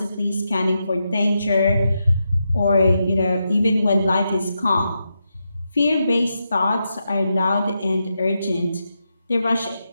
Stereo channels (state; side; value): inverted; both; correlation -0.86